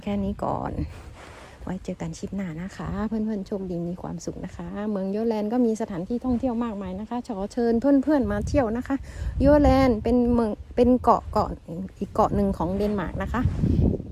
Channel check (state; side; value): identical; both; correlation 1.00